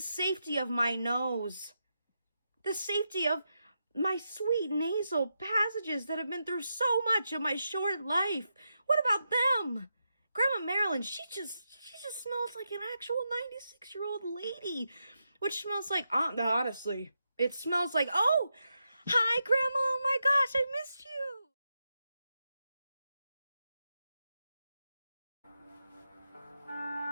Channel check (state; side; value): inverted; both; correlation -0.86